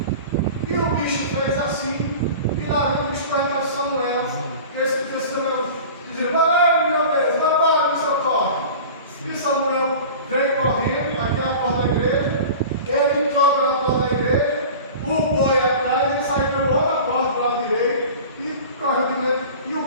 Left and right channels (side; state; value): both; inverted; correlation -0.37